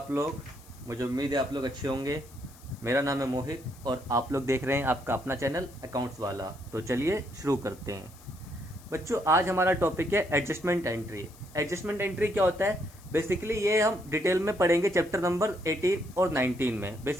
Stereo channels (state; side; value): noise; left; hiss, 24 dB below the sound